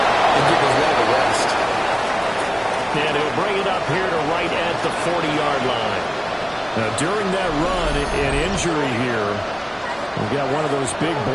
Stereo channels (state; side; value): identical; both; correlation 1.00